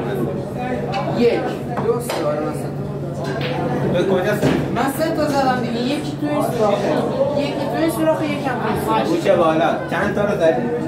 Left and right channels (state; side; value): identical; both; correlation 1.00